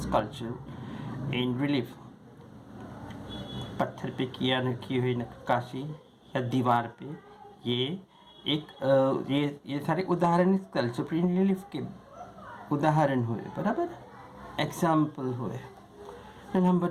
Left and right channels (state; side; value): identical; both; correlation 1.00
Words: sculpture in relief. पत्थर पे की हुई नक्काशी या दीवार पे, ये सारे उदाहरण स्कल्पचर इन रिलीफ के उदाहरण हुए, बराबर, एग्जाम्पल हुए। Number